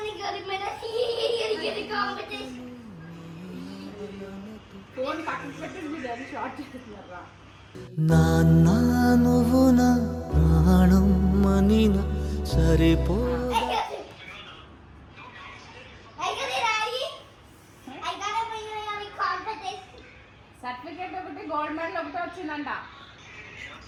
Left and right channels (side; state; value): both; identical; correlation 1.00